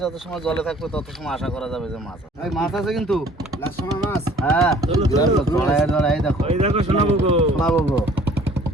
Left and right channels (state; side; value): normal; both; correlation 0.54